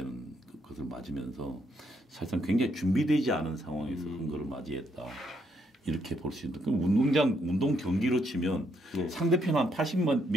것을 맞으면서 사실상 굉장히 준비되지 않은 상황에서 선거를 맞이했다. 이렇게 볼 수 있는. 그럼 운동 경기로 치면 상대편 한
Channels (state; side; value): normal; both; correlation 0.74